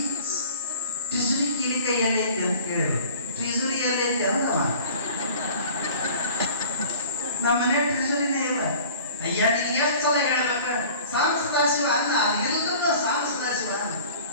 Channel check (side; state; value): both; inverted; correlation -0.46